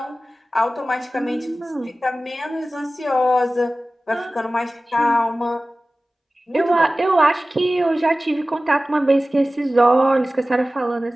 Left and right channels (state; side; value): normal; both; correlation 0.97